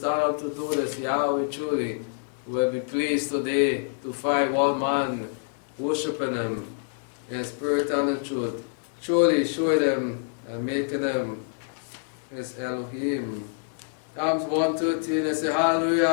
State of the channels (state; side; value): silent; right; digital silence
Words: up to do this, Yahweh truly will be pleased today to find one man worshiping Him in spirit and in truth. truly showing Him and making Him His Elohim. Psalms 113, I say